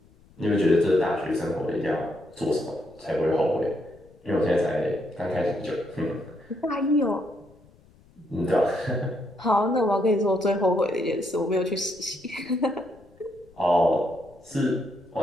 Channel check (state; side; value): noise; left; rumble, 28 dB below the sound